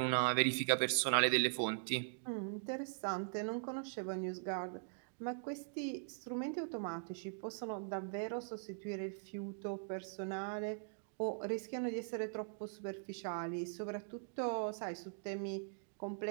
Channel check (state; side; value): silent; left; digital silence